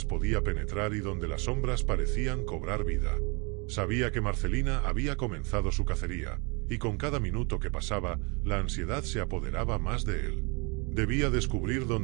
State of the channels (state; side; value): quieter; left; 31.1 dB